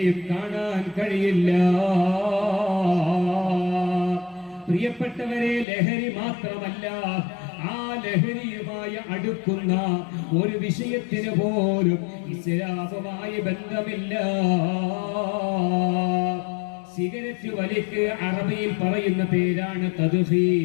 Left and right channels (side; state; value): right; drops out; at 5.7 s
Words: കാണാൻ കഴിയില്ല. പ്രിയപ്പെട്ടവരെ, ലഹരി മാത്രമല്ല, ആ ലഹരിയുമായി അടുക്കുന്ന ഒരു വിഷയത്തിന് പോലും ഇസ്ലാമുമായി ബന്ധമില്ല. സിഗരറ്റ് വലിക്ക് അറബിയിൽ പറയുന്ന പേരാണ്